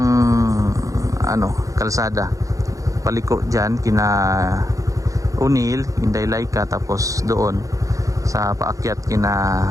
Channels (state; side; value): late; left; 0.16 ms